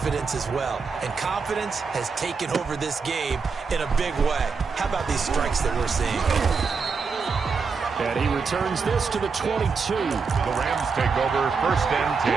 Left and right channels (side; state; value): left; quieter; 5.1 dB